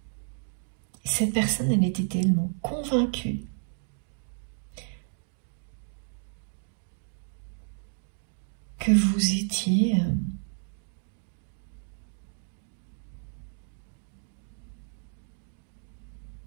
cette personne, elle était tellement convaincue que vous étiez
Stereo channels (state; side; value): silent; left; digital silence